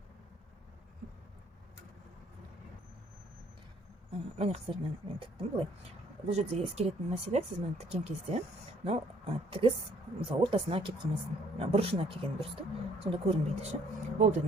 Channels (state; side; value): normal; both; correlation 0.61